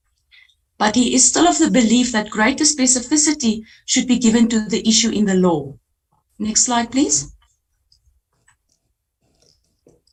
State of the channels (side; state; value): both; identical; correlation 1.00